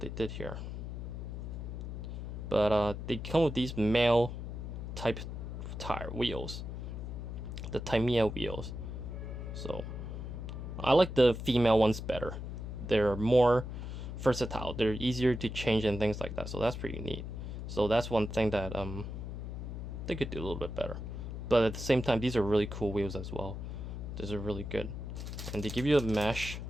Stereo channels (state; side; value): noise; left; hum, 6 dB below the sound